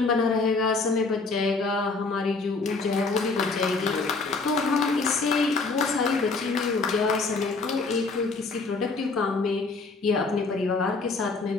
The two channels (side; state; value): right; quieter; 4.0 dB